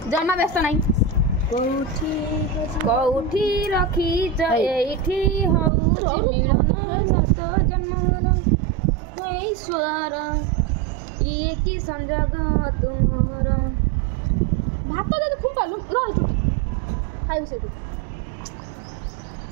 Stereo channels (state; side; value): drops out; left; at 5.7 s